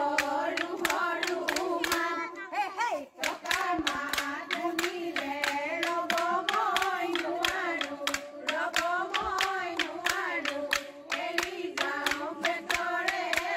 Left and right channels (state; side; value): identical; both; correlation 1.00